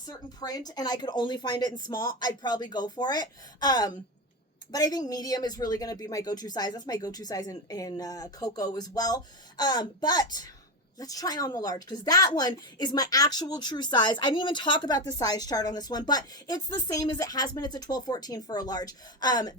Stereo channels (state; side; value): normal; both; correlation 0.16